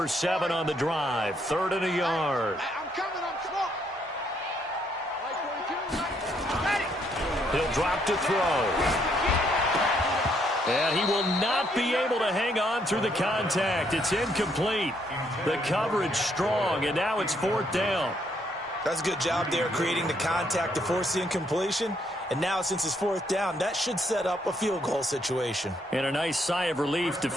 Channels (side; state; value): both; normal; correlation 0.72